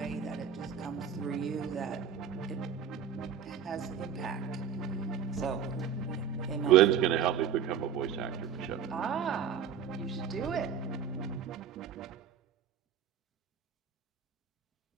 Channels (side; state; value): left; quieter; 7.8 dB